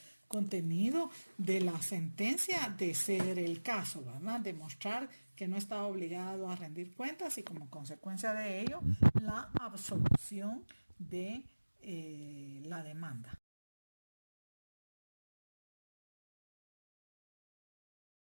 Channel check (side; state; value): both; inverted; correlation -1.00